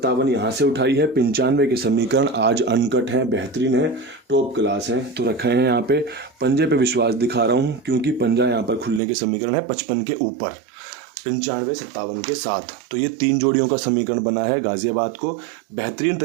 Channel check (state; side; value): drops out; left; at 9.0 s